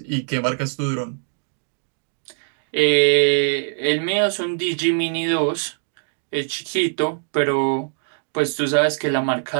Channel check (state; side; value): silent; left; digital silence